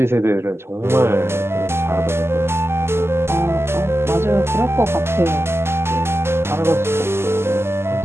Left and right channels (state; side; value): late; left; 0.12 ms